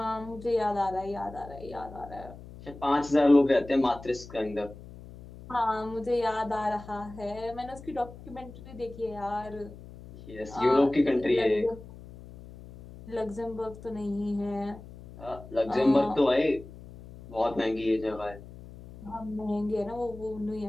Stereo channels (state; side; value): noise; left; hum, 16 dB below the sound